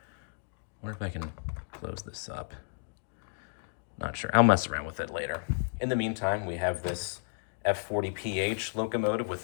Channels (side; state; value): right; silent; digital silence